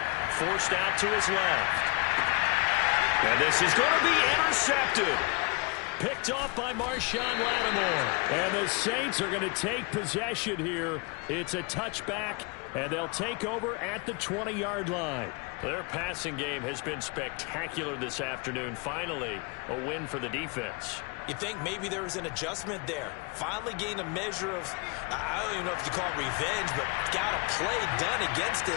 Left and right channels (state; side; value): quieter; right; 30.0 dB